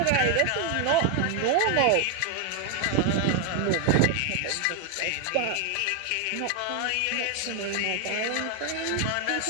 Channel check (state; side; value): different; both; correlation 0.01